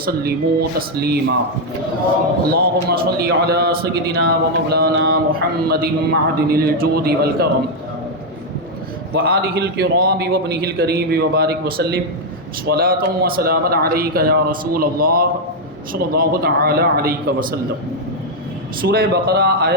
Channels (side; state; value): both; normal; correlation 0.00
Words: تسلیما اللہم صل علی سیدنا ومولانا محمد معدن الجود والکرم وآلہ الکرام وابنہ الکریم وبارک وسلم صلاۃ و سلاما علیک یا رسول اللہ صلی اللہ تعالی علیہ وسلم۔ سورہ بقرہ